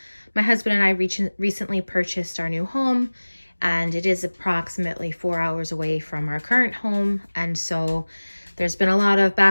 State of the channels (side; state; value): both; inverted; correlation -1.00